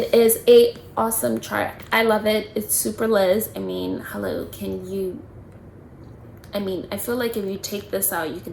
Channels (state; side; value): identical; both; correlation 1.00